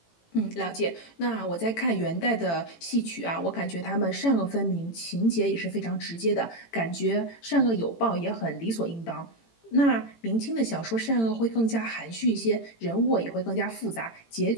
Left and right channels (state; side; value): late; right; 18 ms